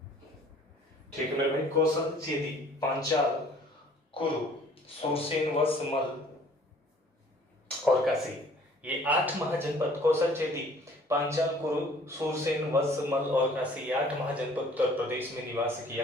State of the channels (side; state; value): both; normal; correlation 0.55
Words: ठीक है मेरे भाई, कौशल, चेदी, पांचाल, कुरु, सुरसेन, वत्स, मल्ल और काशी, ये 8 महाजनपद कौशल, चेदी, पांचाल, कुरु, सुरसेन, वत्स, मल्ल और काशी, ये 8 महाजनपद उत्तर प्रदेश में निवास